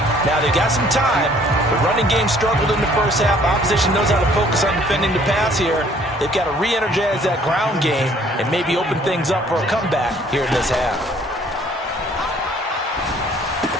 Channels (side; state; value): both; normal; correlation 0.58